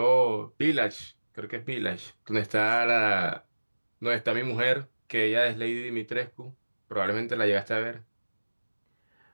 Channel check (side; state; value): both; inverted; correlation -1.00